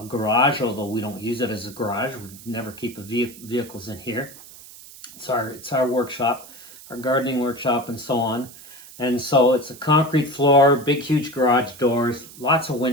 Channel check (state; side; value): noise; right; hiss, 18 dB below the sound